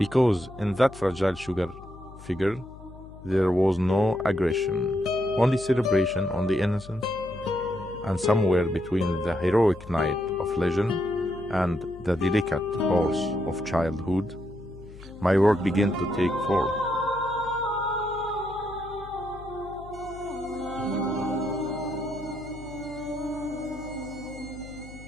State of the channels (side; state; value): left; noise; hum, 17 dB below the sound